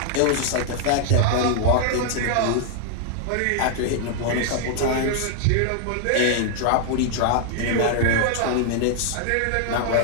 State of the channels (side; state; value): both; different; correlation 0.00